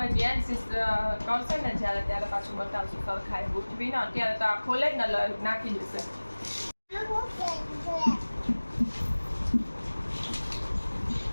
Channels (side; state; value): both; inverted; correlation -1.00